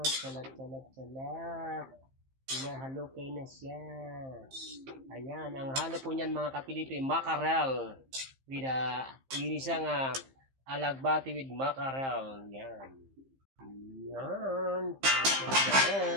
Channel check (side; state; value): left; late; 15 ms